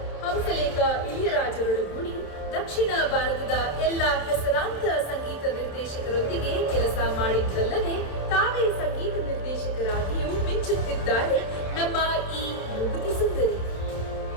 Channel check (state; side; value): late; right; 27 ms